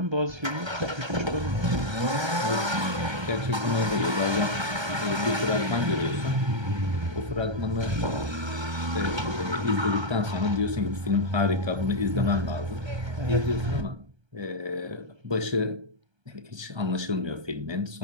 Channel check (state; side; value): late; left; 1.3 ms